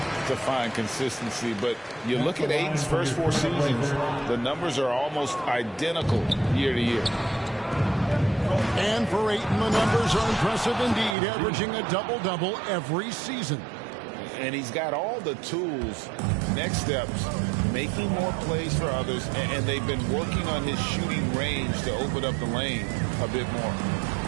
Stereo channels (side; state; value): left; drops out; at 11.2 s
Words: to find consistency, but you look at Ayton's first 4 seasons, the numbers are almost identical year to year. And for Ayton, the numbers are impressive indeed, averaging a double-double every season. And he's got all the tools, next steps, making more plays for others, and they've been working on his shooting range to open up the lane a bit more.